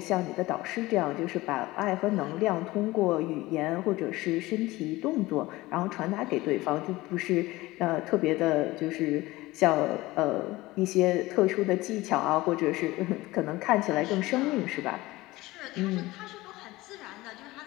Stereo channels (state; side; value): quieter; right; 19.3 dB